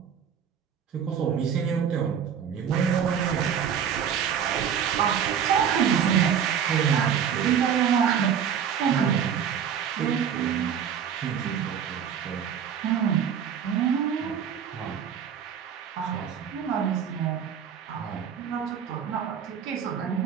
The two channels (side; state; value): left; quieter; 8.1 dB